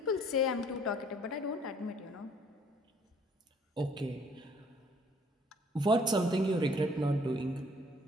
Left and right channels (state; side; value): normal; both; correlation 0.60